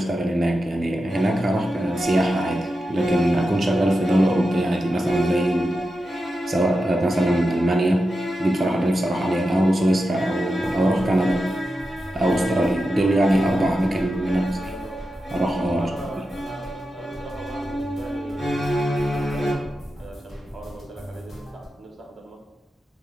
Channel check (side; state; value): both; normal; correlation 0.90